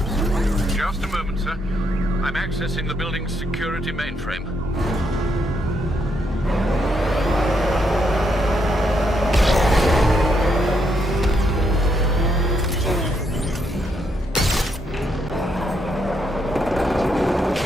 Just a moment, sir. I'm accessing the building's security mainframe.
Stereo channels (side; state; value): both; normal; correlation 0.77